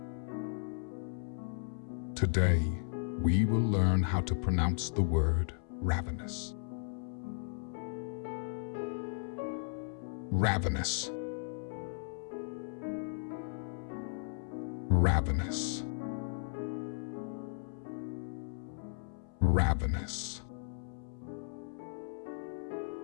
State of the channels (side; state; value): right; silent; 54 dB below the other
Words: Today, we will learn how to pronounce the word ravenous. Ravenous. Ravenous. Ravenous.